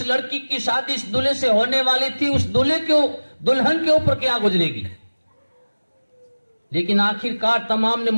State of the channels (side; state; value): both; inverted; correlation -1.00